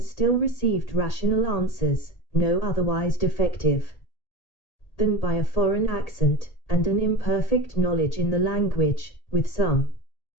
still received rational answers, no otherwise defective than by a foreign accent, and an imperfect knowledge in the language, with some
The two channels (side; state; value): right; late; 1.8 ms